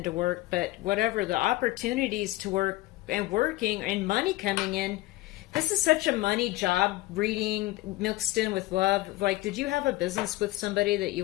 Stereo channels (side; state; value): right; quieter; 18.4 dB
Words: work, but whatever the opportunities to work and working and money coming in, this is such a money job reading mixed in with love. Like, did you have a business with somebody that